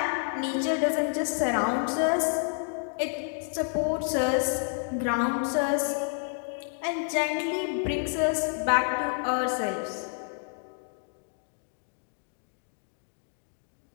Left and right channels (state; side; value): silent; right; 58 dB below the other